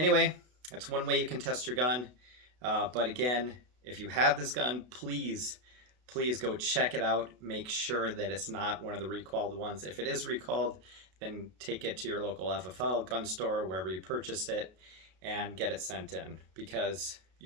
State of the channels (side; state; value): left; late; 32 ms